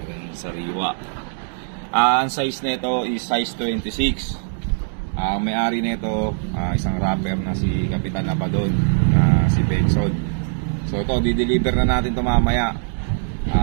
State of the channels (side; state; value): left; silent; digital silence